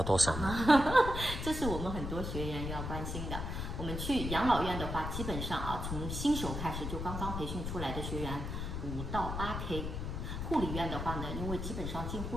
多少呢？这是我们很多学员要关心的。我们去养老院的话，基本上啊，从新手开始，就刚刚培训出来的学员5到8K。护理院的话呢，因为基本上进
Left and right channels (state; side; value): noise; left; rumble, 4 dB below the sound